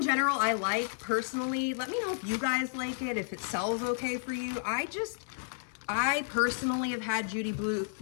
general, I like personally. Let me know if you guys like it, if it sells okay for you. I personally have had Judy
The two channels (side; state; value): right; silent; 56 dB below the other